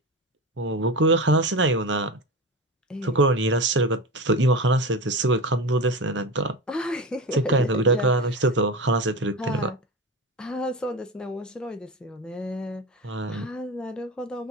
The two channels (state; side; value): normal; both; correlation 0.25